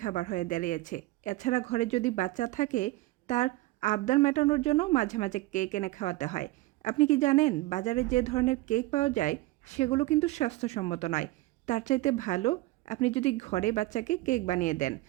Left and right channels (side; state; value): left; quieter; 18.9 dB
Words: খাবার হয়ে দাঁড়িয়েছে। এছাড়া ঘরে যদি বাচ্চা থাকে তার আবদার মেটানোর জন্য মাঝে মাঝে কেক এনে খাওয়াতে হয়। আপনি কি জানেন বাজারে যে ধরনের কেক পাওয়া যায় সেগুলো কিন্তু স্বাস্থ্যসম্মত নয়। তার চাইতে ভালো আপনি যদি ঘরে বাচ্চাকে কেক বানিয়ে দেন।